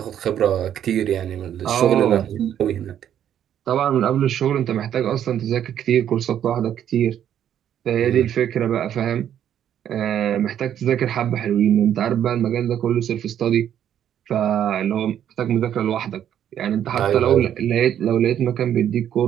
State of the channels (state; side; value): quieter; left; 10.1 dB